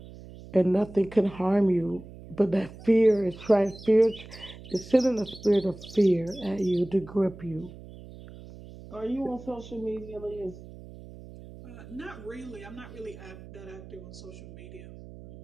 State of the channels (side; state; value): right; noise; hum, 16 dB below the sound